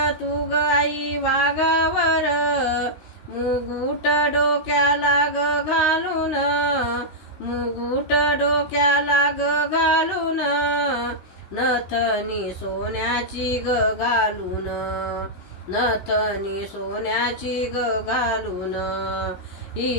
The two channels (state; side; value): late; right; 16 ms